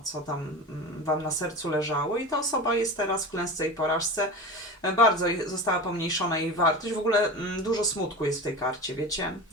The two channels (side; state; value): both; normal; correlation 0.29